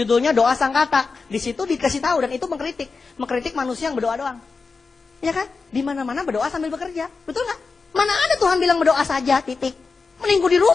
Doa Sang Kata. Di situ dikasih tahu dan itu mengkritik manusia yang berdoa doang. Ya kan? Di mana-mana berdoa sambil bekerja. Betul nggak? Mana ada Tuhan bilang berdoa saja, titik. Mending gue di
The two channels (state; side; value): quieter; right; 4.5 dB